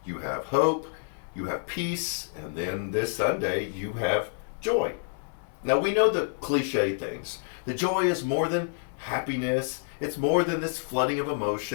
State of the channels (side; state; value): right; silent; digital silence